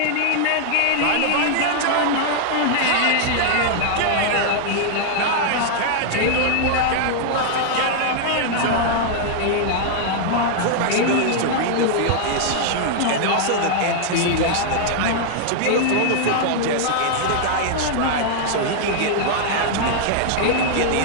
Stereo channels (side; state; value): both; different; correlation 0.00